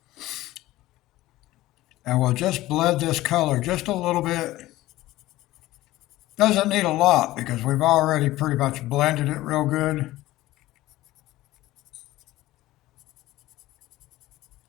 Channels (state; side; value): quieter; right; 16.7 dB